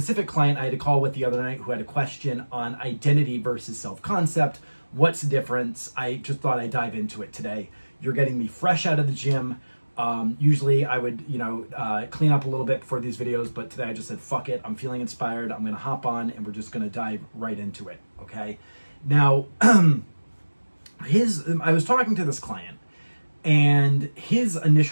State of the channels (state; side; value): inverted; both; correlation -1.00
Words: client I had a call with the other night who had a question on identity versus self-concept. What's the difference? I just thought I'd dive into it today. You're getting me fresh out of the gym. Usually I would, clean up a little bit before these videos, but today I just said, fuck it. I'm feeling inspired. I'm going to hop on and we're just going to dive right into it. Okay. Now, I was talking to this client, and his